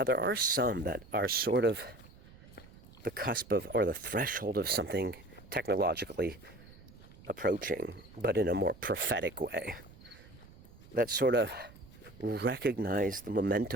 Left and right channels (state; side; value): noise; right; rumble, 21 dB below the sound